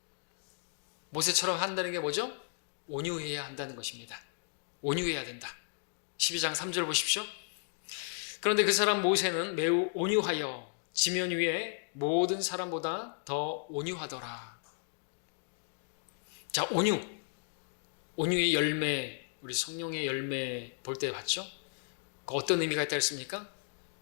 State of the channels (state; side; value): silent; right; digital silence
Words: 모세처럼 한다는 게 뭐죠? 온유해야 한다는 것입니다. 온유해야 된다. 12장 3절 보십시오. 그런데 그 사람 모세는 매우 온유하여 지면 위에 모든 사람보다 더 온유하더라. 자, 온유의 열매, 우리 성령의 열매 볼 때 봤죠? 어떤 의미가 있다 했습니까?